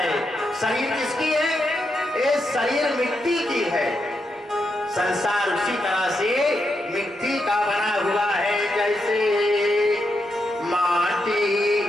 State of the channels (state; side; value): normal; both; correlation 0.83